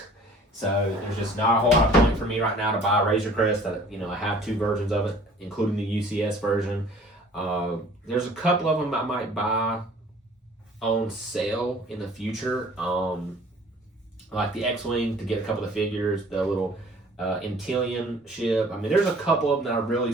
So there's just not a whole lot of point for me right now to buy a Razor Crest. I have two versions of it, including the UCS version. There's a couple of them I might buy on sale in the future, like the X-Wing to get a couple of the figures, the little Intillion ship. I mean, there's a couple of them that I'm really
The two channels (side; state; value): both; normal; correlation 0.51